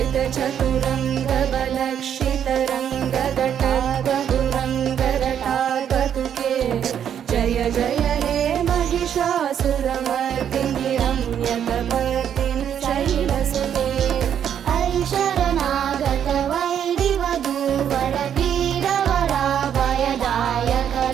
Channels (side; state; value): left; quieter; 9.0 dB